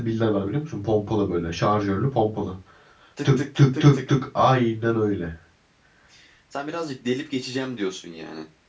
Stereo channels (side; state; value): both; identical; correlation 1.00